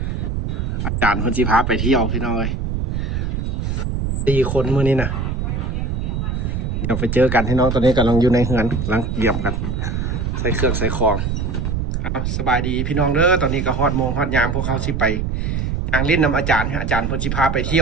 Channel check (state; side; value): noise; right; rumble, 1 dB below the sound